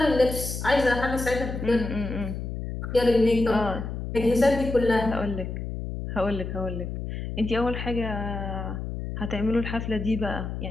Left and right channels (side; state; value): left; noise; hum, 6 dB below the sound